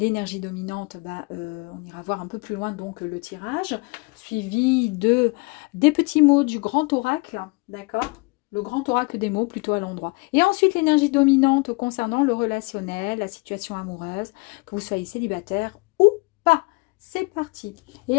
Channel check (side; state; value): right; quieter; 27.9 dB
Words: dominante, bah, on ira voir un peu plus loin donc le tirage, suivi des petits mots du grand oracle, d'accord? Le grand oracle des mots plutôt à l'endroit. Et ensuite l'énergie dominante concernant le relationnel, la situation amoureuse, que vous soyez célibataire ou pas. C'est parti.